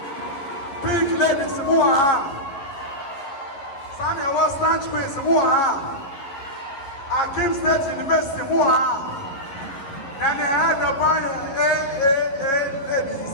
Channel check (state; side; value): late; right; 11 ms